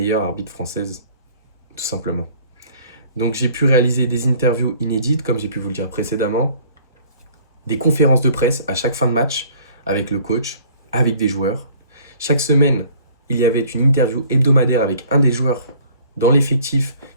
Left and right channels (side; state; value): both; inverted; correlation -0.54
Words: arbitre française, tout simplement. Donc j'ai pu réaliser des interviews inédites, comme j'ai pu vous le dire précédemment, des conférences de presse à chaque fin de match, avec le coach, avec des joueurs. Chaque semaine, il y avait une interview hebdomadaire avec un des joueurs dans l'effectif